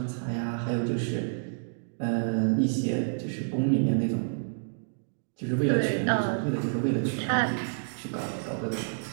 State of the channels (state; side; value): silent; left; digital silence